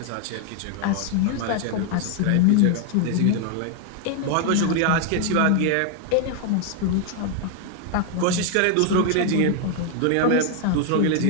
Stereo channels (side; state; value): both; different; correlation 0.00